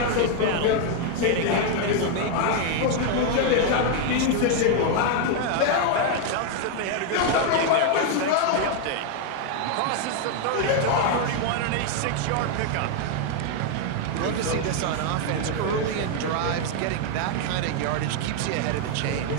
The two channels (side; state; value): both; different; correlation 0.00